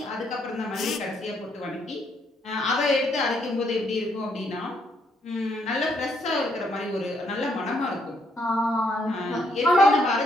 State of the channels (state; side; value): normal; both; correlation 0.73